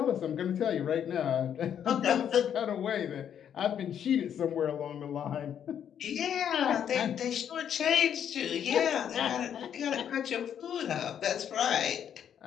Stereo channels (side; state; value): right; quieter; 9.0 dB